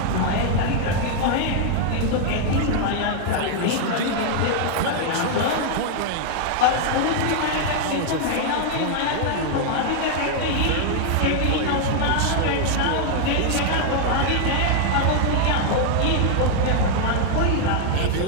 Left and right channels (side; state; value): both; different; correlation 0.00